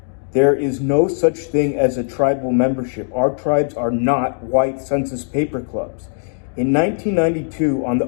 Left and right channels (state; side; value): silent; right; 62 dB below the other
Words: There is no such thing as a tribal membership. Our tribes are not white census paper clubs. In 1992, on the